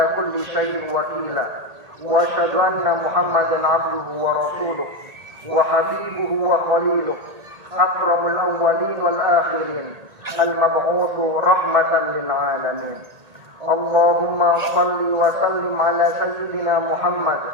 كل شيء وكيلا وأشهد أن محمدا عبده ورسوله وحبيبه وخليله أكرم الأولين والآخرين المبعوث رحمة للعالمين. اللهم صل وسلم على سيدنا محمد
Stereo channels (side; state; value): left; late; 1.9 ms